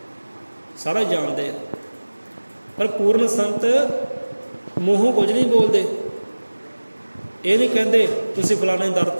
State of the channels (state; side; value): inverted; both; correlation -1.00